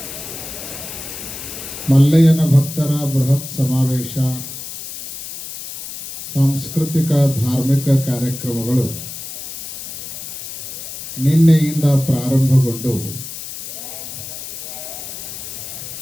ಮಲ್ಲಯ್ಯನ ಭಕ್ತರ ಬೃಹತ್ ಸಮಾವೇಶ, ಸಾಂಸ್ಕೃತಿಕ ಧಾರ್ಮಿಕ ಕಾರ್ಯಕ್ರಮಗಳು ನಿನ್ನೆಯಿಂದ ಪ್ರಾರಂಭಗೊಂಡು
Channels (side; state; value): left; noise; hiss, 10 dB below the sound